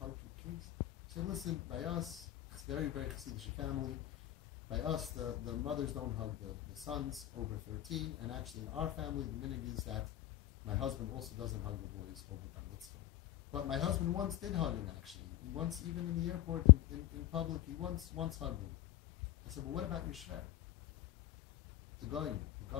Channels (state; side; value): quieter; right; 14.3 dB